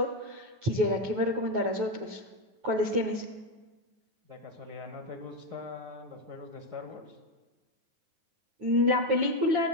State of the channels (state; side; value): late; left; 9.4 ms